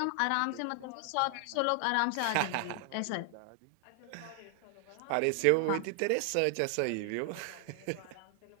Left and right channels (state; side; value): different; both; correlation 0.00